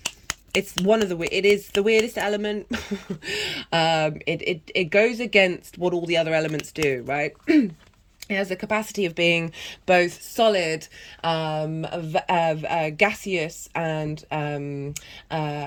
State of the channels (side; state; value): both; identical; correlation 1.00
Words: It is the weirdest element. It goes against what all the other elements do, right? It has the capacity of being both solid, gaseous, and